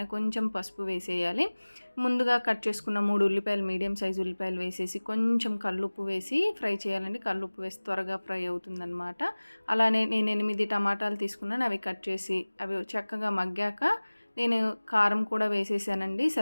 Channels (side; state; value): both; inverted; correlation -1.00